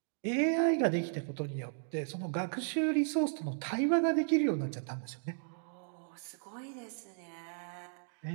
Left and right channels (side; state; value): left; silent; digital silence